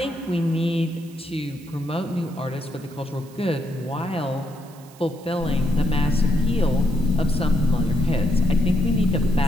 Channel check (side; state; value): right; noise; hiss, 24 dB below the sound